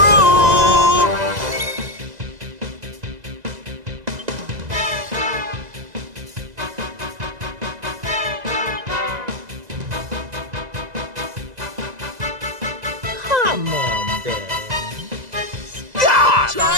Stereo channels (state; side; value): late; left; 2.0 ms